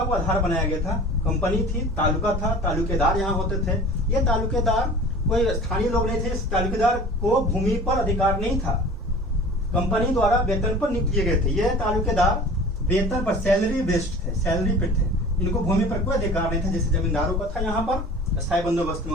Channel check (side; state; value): both; normal; correlation 0.42